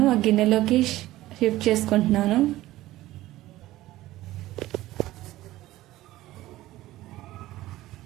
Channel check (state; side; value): quieter; left; 16.2 dB